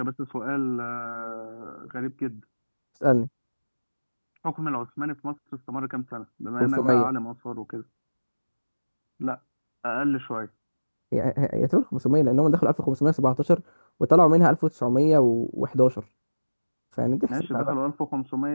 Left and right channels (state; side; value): inverted; both; correlation -1.00